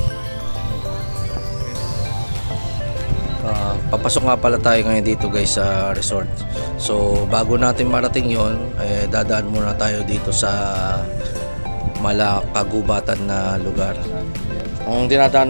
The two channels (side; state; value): both; inverted; correlation -1.00